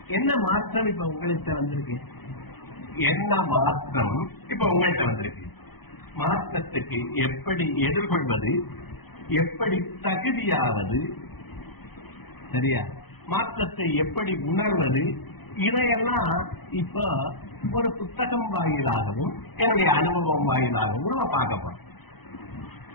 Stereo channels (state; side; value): late; right; 0.99 ms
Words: என்ன மாற்றம் இப்ப உங்கள்கிட்ட வந்திருக்கு? என்ன மாற்றம் இப்ப உங்கள்கிட்ட வந்திருக்கு? மாற்றத்துக்கு எப்படி எதிர்கொள்வது, எப்படி தகுதியாவது, சரியா? மாற்றத்தை எப்படி உணர்வது, இதையெல்லாம் இப்ப ஒரு புத்தகம் வாயிலாகவும் என்னுடைய அனுபவம் வாயிலாகவும் நம்ம பார்க்க போறோம்.